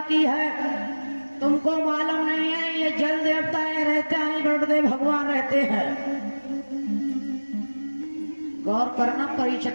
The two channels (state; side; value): inverted; both; correlation -1.00